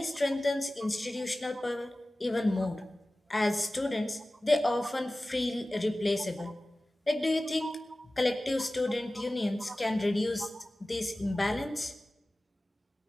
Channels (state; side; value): normal; both; correlation 0.97